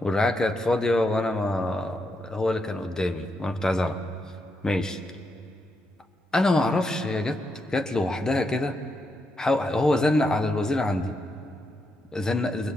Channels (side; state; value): both; normal; correlation 0.82